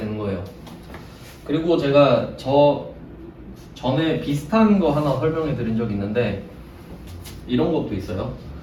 거예요. 그리고 제가 전에 비슷한 거 하나 설명해 드린 적이 있는데 이런 것도 있어요.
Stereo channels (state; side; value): identical; both; correlation 1.00